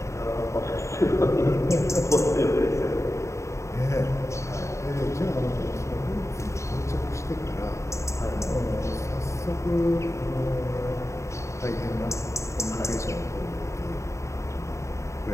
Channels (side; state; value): right; late; 0.14 ms